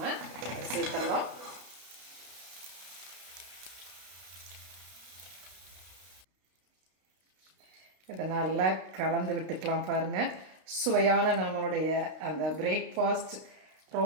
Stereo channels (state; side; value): late; left; 32 ms